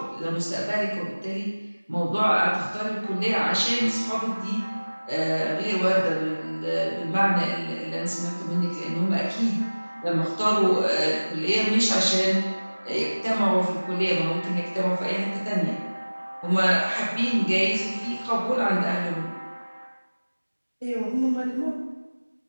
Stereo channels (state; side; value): inverted; both; correlation -1.00